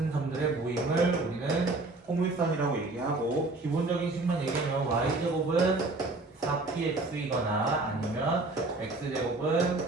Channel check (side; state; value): left; quieter; 3.2 dB